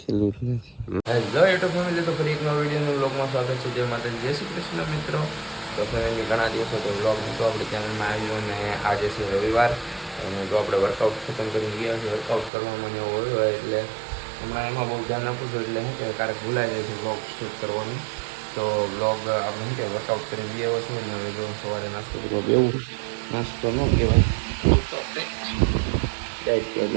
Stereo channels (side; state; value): left; drops out; at 12.5 s